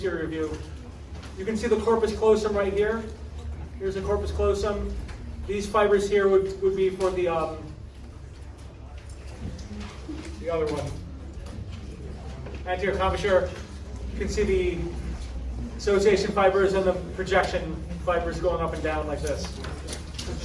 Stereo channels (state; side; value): identical; both; correlation 1.00